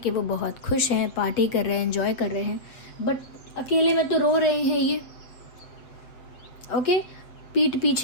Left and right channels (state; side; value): late; right; 7.8 ms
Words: वो बहुत खुश हैं, पार्टी कर रहे हैं, एंजॉय कर रहे हैं, बट अकेले में तो रो रहे हैं ये। ओके, पीठ